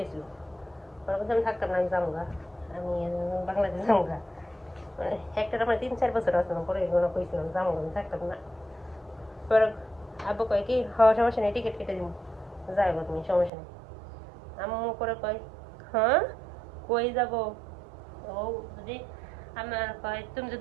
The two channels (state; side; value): drops out; left; at 13.5 s